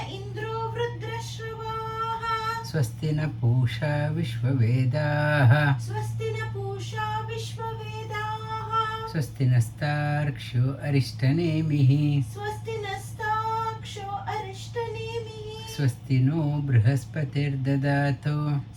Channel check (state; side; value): identical; both; correlation 1.00